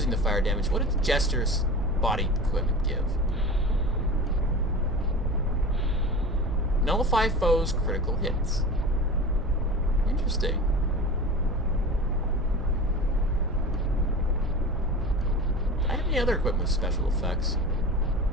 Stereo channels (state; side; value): noise; right; hum, 9 dB below the sound